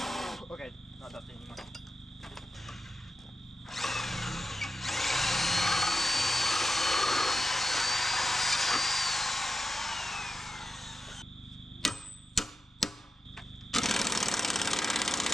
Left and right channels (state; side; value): normal; both; correlation 0.90